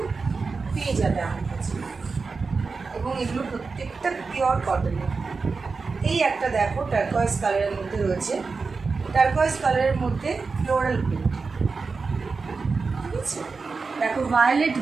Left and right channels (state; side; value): quieter; left; 4.5 dB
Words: পেয়ে যাবে আমার কাছে, এবং এগুলো প্রত্যেকটা পিওর কটনের। এই একটা দেখো টার্কোয়েজ কালারের মধ্যে রয়েছে, টার্কোয়েজ কালারের মধ্যে ফ্লোরাল প্রিন্ট। ঠিক আছে, দেখো ভায়োলেট